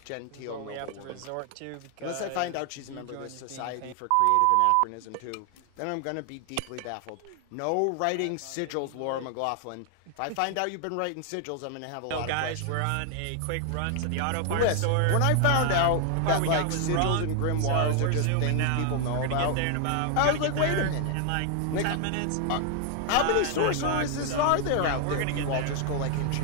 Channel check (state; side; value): different; both; correlation 0.00